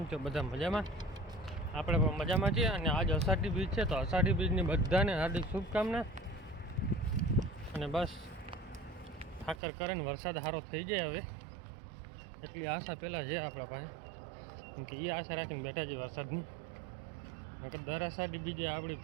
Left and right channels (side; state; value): left; drops out; at 9.6 s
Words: છો બધા? મજામાં? આપણે પણ મજામાં છીએ. અને આજ અષાઢી બીજ છે તો અષાઢી બીજની બધાને હાર્દિક શુભકામના. અને બસ ઠાકર કરે ને વરસાદ સારો થઈ જાય હવે એટલી આશા પહેલાં છે આપણા પાસે, કેમ કે એ આશા રાખીને બેઠા છે વરસાદની. નકર દર અષાઢી બીજે આપણી